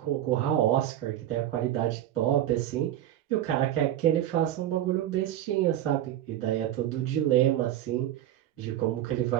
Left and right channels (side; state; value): left; quieter; 12.3 dB